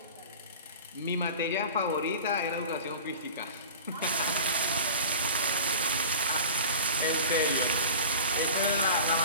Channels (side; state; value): both; inverted; correlation -0.37